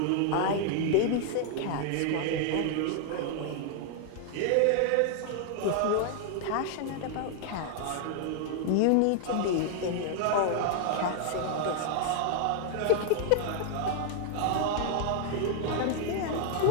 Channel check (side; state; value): both; different; correlation 0.00